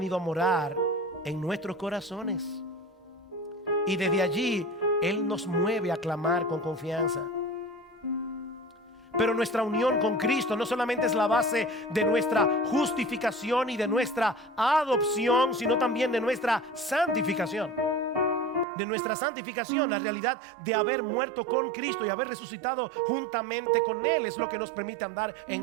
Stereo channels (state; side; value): drops out; left; at 18.7 s